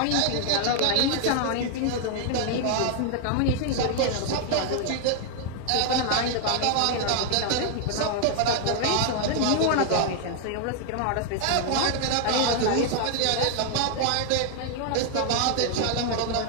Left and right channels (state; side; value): different; both; correlation 0.00